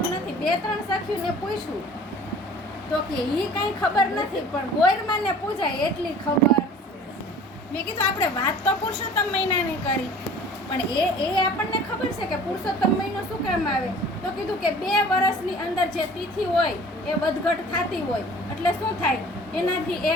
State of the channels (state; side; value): normal; both; correlation 0.46